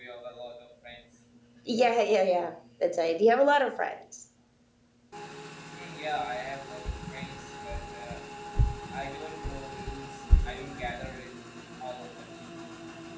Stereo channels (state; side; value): identical; both; correlation 1.00